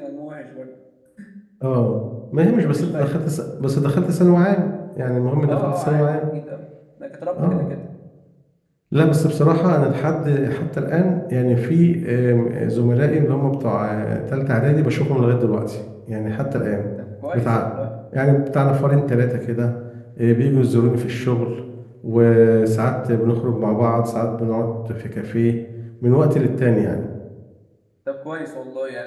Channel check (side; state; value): both; identical; correlation 1.00